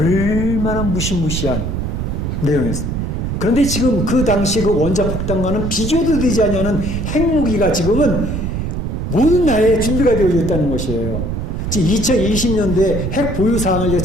무시무시한 내용이었습니다. 그런데 지금 그 당시 그 원자폭탄과는 비교도 되지 않는 핵무기가 지금은 모든 나라에 준비가 되어 있다는 것이에요. 지금 2020년도에 핵 보유 사항을 제가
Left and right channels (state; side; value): noise; right; rumble, 3 dB below the sound